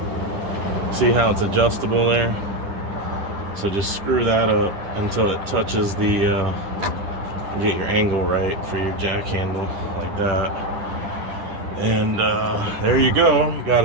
See how it's adjustable there? So just screw that up until it touches the, get your angle right for your jack handle, like that. And there you go, you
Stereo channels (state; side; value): late; left; 10 ms